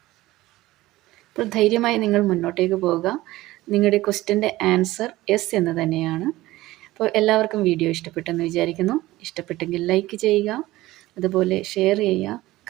അപ്പോൾ ധൈര്യമായി നിങ്ങൾ മുന്നോട്ടേക്ക് പോവുക. നിങ്ങളുടെ ക്വസ്റ്റ്യൻ്റെ ആൻസർ യെസ് എന്ന് തന്നെയാണ്. അപ്പോൾ എല്ലാവർക്കും വീഡിയോ ഇഷ്ടപ്പെട്ടെന്ന് വിചാരിക്കുന്നു. ഇഷ്ടപ്പെട്ടെങ്കിൽ ലൈക്ക് ചെയ്യുക, അതുപോലെ ഷെയർ ചെയ്യുക,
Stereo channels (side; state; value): left; quieter; 17.5 dB